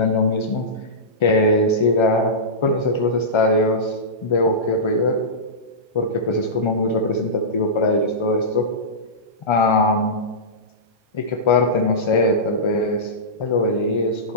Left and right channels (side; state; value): right; late; 1.3 ms